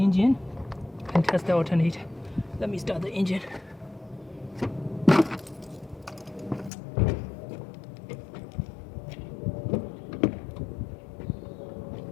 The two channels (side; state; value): right; drops out; at 6.7 s